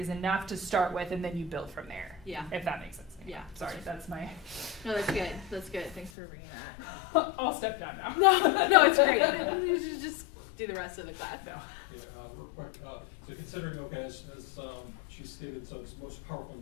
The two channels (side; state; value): right; drops out; at 6.1 s